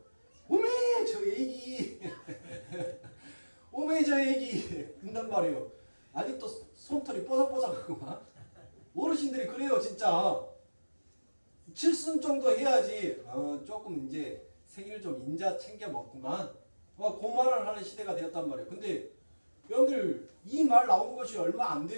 오메 저 애기 오메 저 애기 그런단 말이에요. 아직도 손털이 뽀삭뽀삭하고 막 어르신들이 그래요 진짜. 칠순 정도 해야지 조금 이제 생일 좀 인자 챙겨 먹구만 그 말을 하는 시대가 되었단 말이에요. 근데 여러분들 이 말 나온 것이 얼마 안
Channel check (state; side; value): inverted; both; correlation -1.00